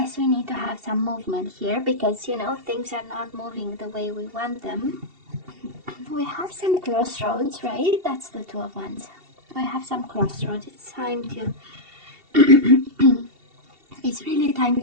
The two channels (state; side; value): late; left; 2.7 ms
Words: we need to have some movement here, because, you know, things are not moving the way we want them. We have some crossroads, right? That's the 2 of Wands. We have some crossroads. It's time to, it's really time